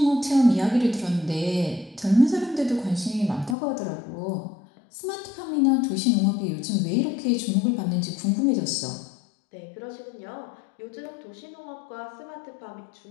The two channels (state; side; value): drops out; right; at 3.6 s